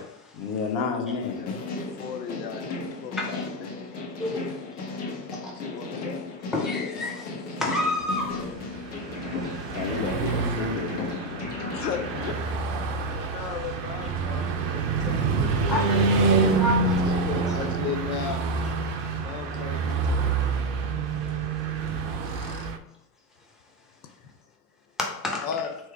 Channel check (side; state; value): both; normal; correlation 0.08